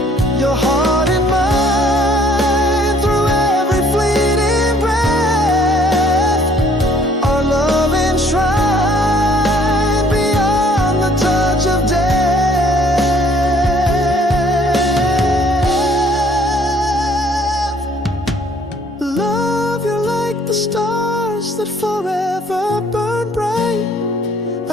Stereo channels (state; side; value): normal; both; correlation 0.60